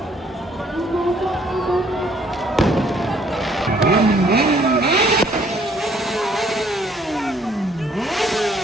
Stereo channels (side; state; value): both; normal; correlation 0.63